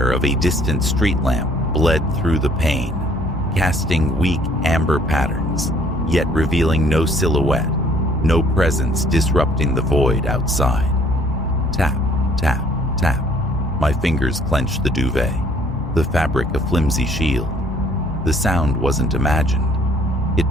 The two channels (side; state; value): both; normal; correlation 0.60